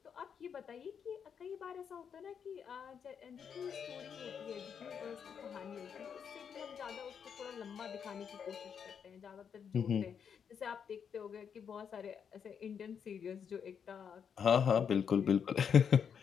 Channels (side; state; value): right; quieter; 7.3 dB